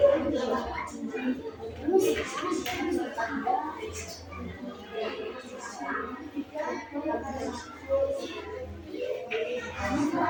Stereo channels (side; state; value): both; identical; correlation 1.00